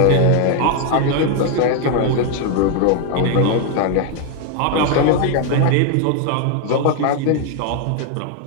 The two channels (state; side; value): different; both; correlation 0.00